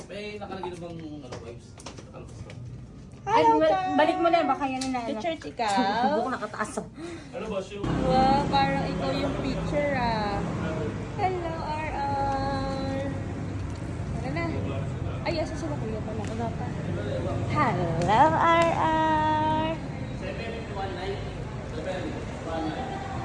May nakalagay na bang vibes? Hello, Star. Balik mo na, baka yan na To ano. church ikaw. Buko nakataas. Ano ba siya? Wow, parang ikaw yung picture ah. Hello, RR. Tara na. Ay, asa sila kuya pala? Wala pa. Hello, RR.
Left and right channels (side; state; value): both; identical; correlation 1.00